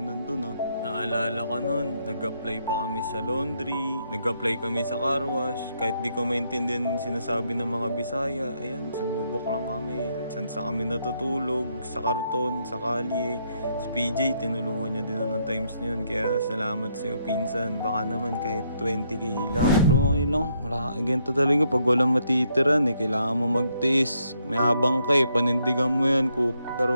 nandun ah. Naalala ko nun, nag-apply pa kami sa laundry, nag-apply kami sa car wash. Kahit di ko maintindihan sinasabi ng mga Bisaya, ayan, sumubok lang kami. Saan sa kami natutulog, sa karton, sa kalye. Si PJ, tinulungan niya din ng times na yun. Kaya salamat sa'yo, pinsan. Baka naman kahit 20k lang. Pero okay lang, ganito talaga pag walang matitiran eh. Kailangan mo magtiis. May habang ka eh, panindigan mo yan,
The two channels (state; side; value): inverted; both; correlation -0.75